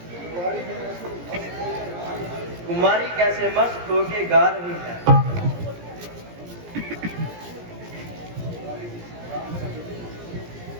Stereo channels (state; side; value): late; left; 17 ms